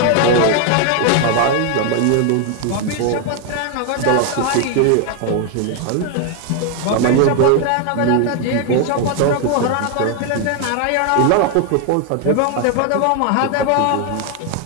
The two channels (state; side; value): different; both; correlation 0.01